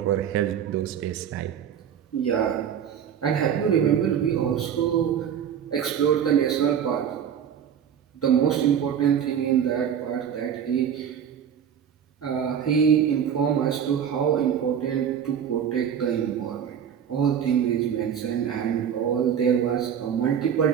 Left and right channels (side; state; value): left; quieter; 8.5 dB